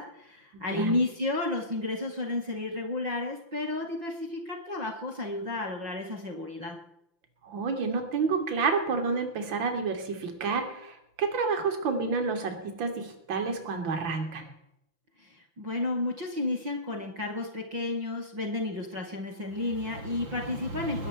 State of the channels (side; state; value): left; late; 5.9 ms